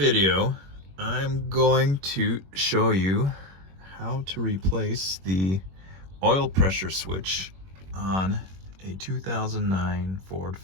I'm going to show you how to replace the oil pressure switch on a 2009 Ford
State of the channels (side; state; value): left; late; 21 ms